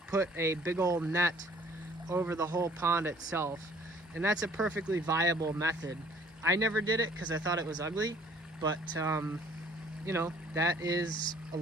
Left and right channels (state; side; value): normal; both; correlation 0.56